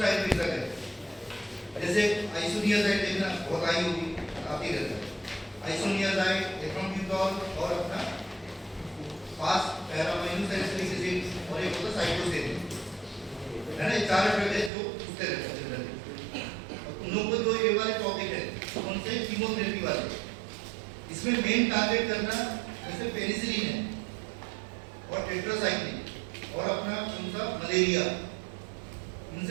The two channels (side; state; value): left; drops out; at 14.7 s